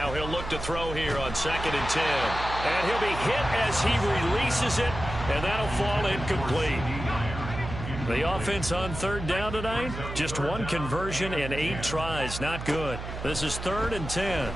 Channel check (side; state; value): right; noise; hum, 8 dB below the sound